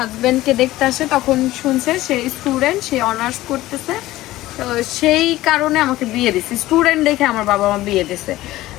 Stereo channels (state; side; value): quieter; right; 16.5 dB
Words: দেখতে আসে তখন শুনছে সে স্টুডেন্ট, সে অনার্স করতেছে, তো সেই কারণে আমাকে বিয়ে দিছে, স্টুডেন্ট দেখে আমার বাবা মা বিয়ে দিছে।